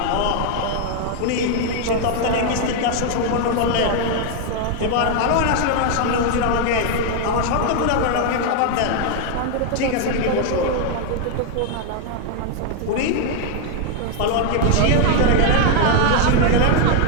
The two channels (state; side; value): different; both; correlation 0.00